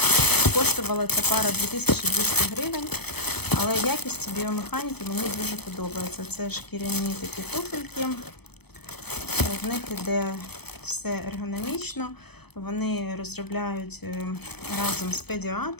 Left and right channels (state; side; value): late; right; 0.98 ms